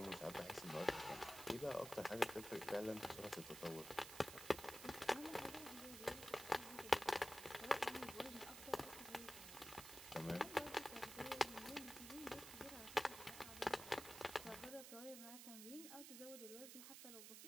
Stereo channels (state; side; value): noise; right; hiss, 10 dB below the sound